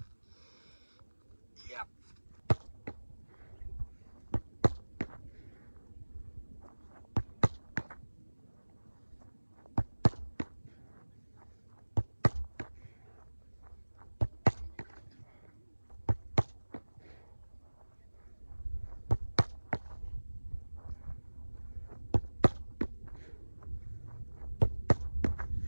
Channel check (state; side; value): inverted; both; correlation -1.00